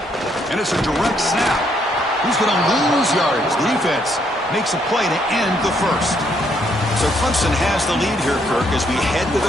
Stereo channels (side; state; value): both; normal; correlation 0.72